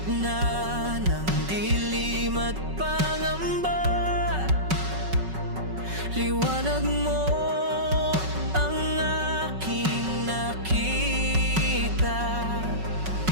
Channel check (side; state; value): left; late; 5.3 ms